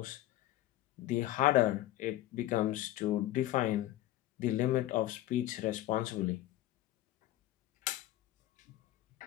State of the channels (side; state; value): right; quieter; 14.9 dB